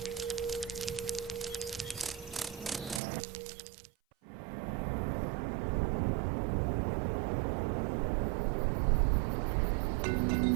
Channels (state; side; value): drops out; left; at 3.0 s